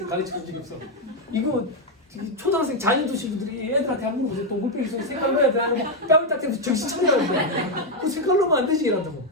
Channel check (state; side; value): normal; both; correlation 0.03